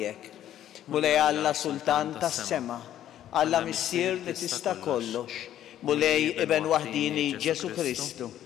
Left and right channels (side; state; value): right; quieter; 11.6 dB